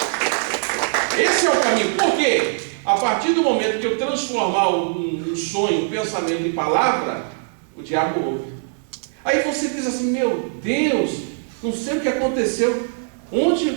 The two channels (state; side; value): silent; left; digital silence